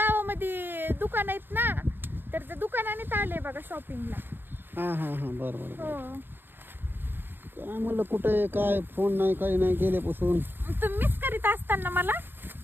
दुकान आहेत ना, तर त्या दुकानानेच आले बघा शॉपिंगला. हा हा हा बरं हो. काय म्हणलं कुठे काय फोन नाही काही नाही गेल्यापासून. तुम्ही मिस करीत असताना मला.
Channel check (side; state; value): left; late; 0.097 ms